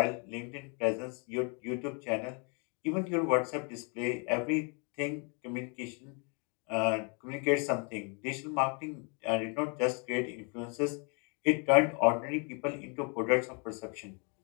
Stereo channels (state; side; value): quieter; right; 36.1 dB